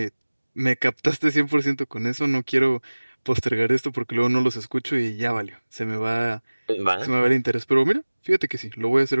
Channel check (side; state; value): both; inverted; correlation -1.00